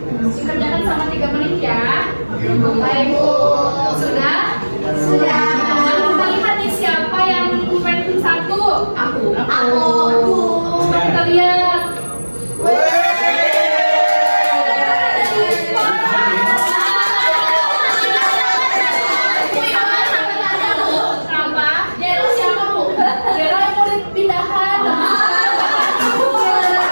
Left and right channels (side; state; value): both; inverted; correlation -1.00